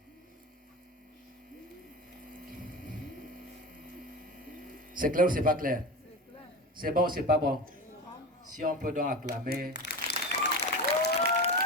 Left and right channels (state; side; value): normal; both; correlation 0.27